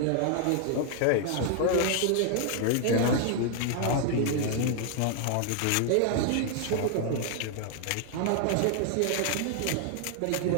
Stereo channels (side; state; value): both; different; correlation 0.00